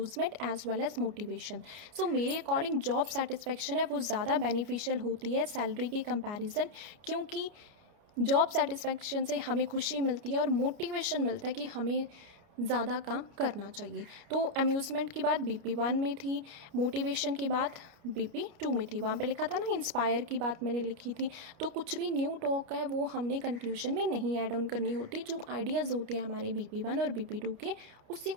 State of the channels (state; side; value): late; left; 29 ms